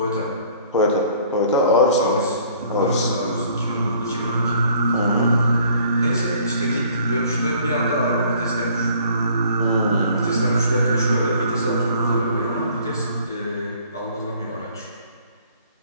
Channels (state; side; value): inverted; both; correlation -0.56